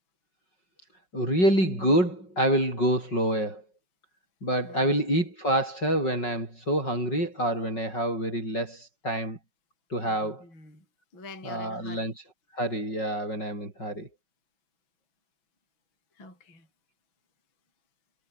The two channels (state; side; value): late; right; 5.4 ms